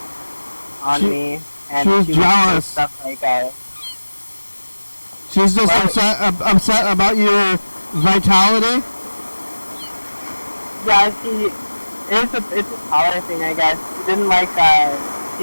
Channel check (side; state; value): both; inverted; correlation -1.00